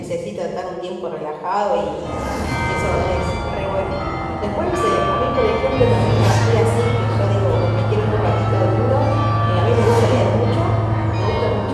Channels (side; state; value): both; identical; correlation 1.00